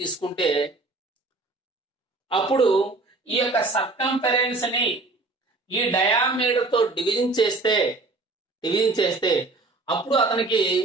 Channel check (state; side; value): quieter; left; 3.3 dB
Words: అప్పుడు ఈ యొక్క సర్కంఫరెన్స్ ని ఈ డయామీటర్ తో డివిజన్ చేస్తే అప్పుడు అతనికి